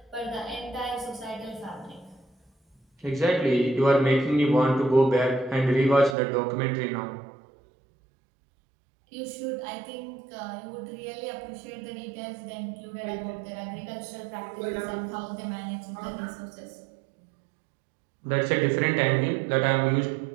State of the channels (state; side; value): drops out; left; at 6.2 s